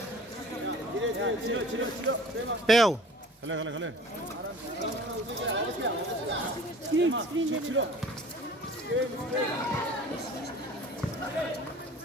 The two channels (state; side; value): normal; both; correlation 0.46